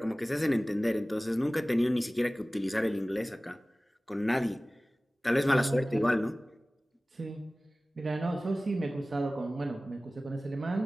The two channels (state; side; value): normal; both; correlation 0.98